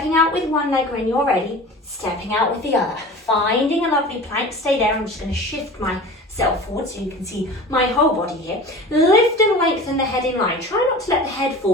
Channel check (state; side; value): normal; both; correlation 0.38